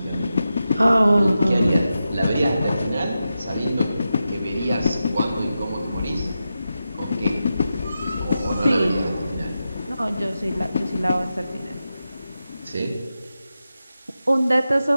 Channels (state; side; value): inverted; both; correlation -0.90